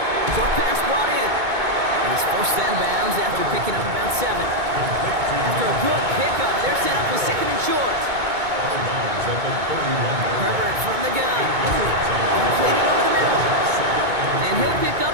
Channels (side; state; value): left; late; 2.2 ms